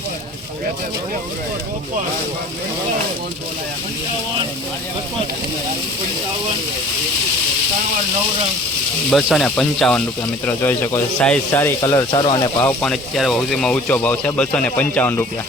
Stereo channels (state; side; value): normal; both; correlation 0.47